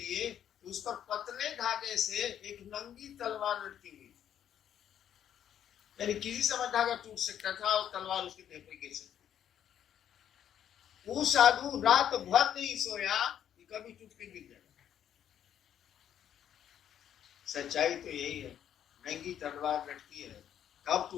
उस पर पतले धागे से एक नंगी तलवार लटकी हुई, यानी किसी समय धागा टूट सकता था और तलवार उसके देह पर गिर सकती। वो साधु रात भर नहीं सोया कि कभी टूट के गिर जाएगा। सच्चाई तो यही है, नंगी तलवार लटकी है, कब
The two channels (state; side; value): quieter; right; 9.8 dB